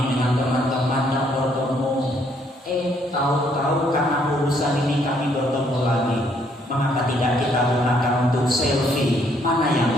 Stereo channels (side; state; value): both; normal; correlation 0.68